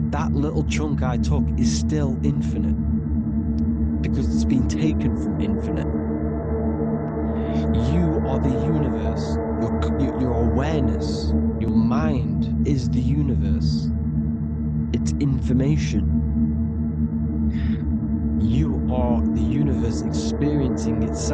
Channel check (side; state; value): both; identical; correlation 1.00